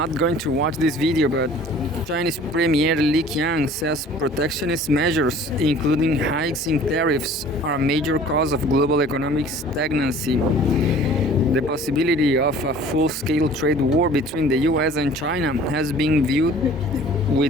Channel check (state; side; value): normal; both; correlation 0.49